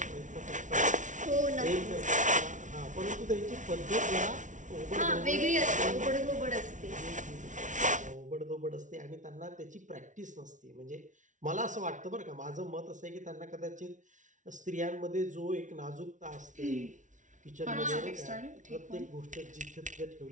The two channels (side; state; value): left; late; 0.37 ms